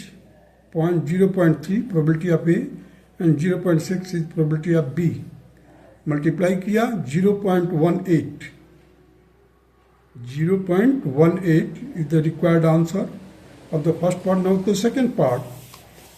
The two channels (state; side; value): identical; both; correlation 1.00